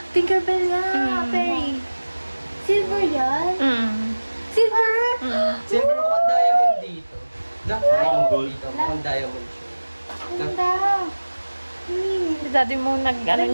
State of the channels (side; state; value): both; inverted; correlation -1.00